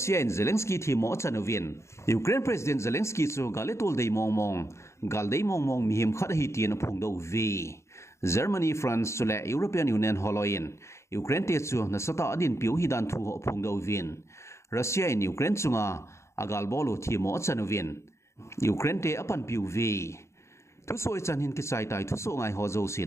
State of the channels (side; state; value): right; late; 0.14 ms